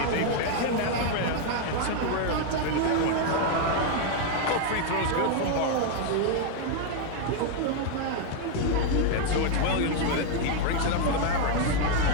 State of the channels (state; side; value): different; both; correlation 0.01